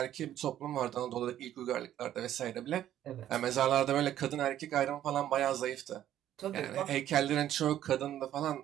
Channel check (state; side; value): quieter; left; 11.8 dB